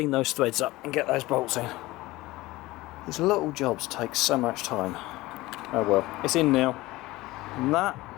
those threads up and get those bolts in. These little jobs take so much time. Oh well, it's in now, and that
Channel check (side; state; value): right; quieter; 19.2 dB